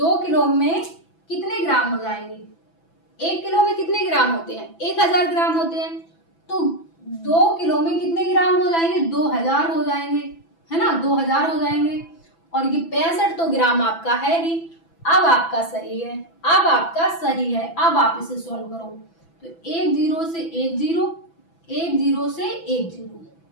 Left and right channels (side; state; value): right; late; 6.0 ms